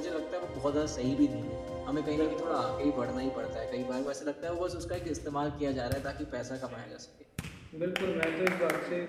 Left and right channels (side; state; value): both; identical; correlation 1.00